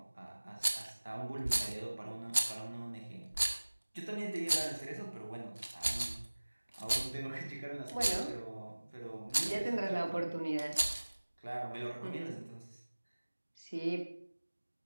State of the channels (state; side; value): inverted; both; correlation -1.00